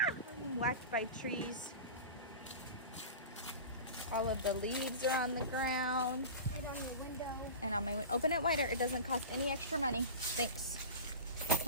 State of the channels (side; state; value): both; inverted; correlation -0.31